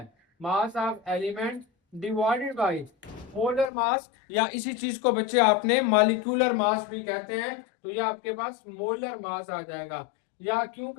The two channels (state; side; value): drops out; right; at 3.7 s